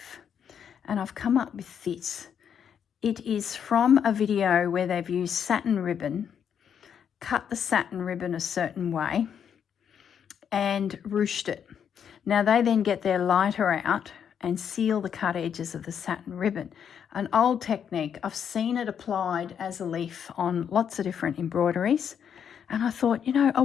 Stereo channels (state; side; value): quieter; right; 8.1 dB